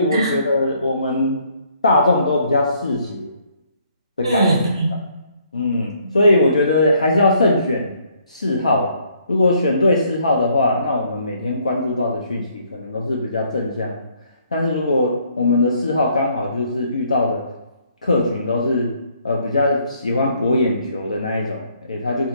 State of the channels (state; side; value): inverted; both; correlation -0.66